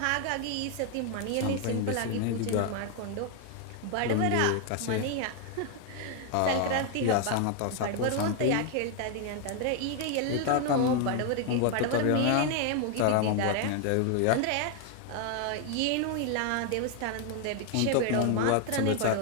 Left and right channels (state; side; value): different; both; correlation 0.01